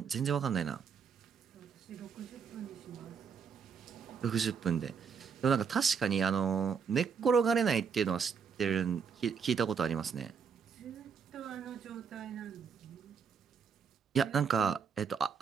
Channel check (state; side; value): quieter; left; 6.4 dB